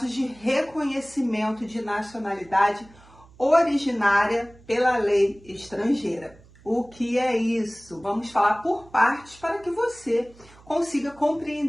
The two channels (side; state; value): right; noise; hum, 25 dB below the sound